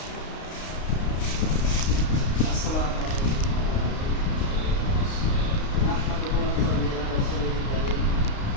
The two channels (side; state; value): right; late; 32 ms